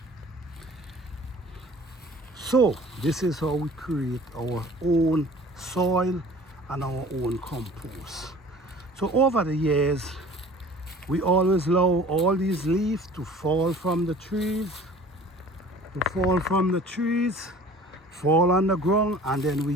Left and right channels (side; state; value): both; normal; correlation 0.46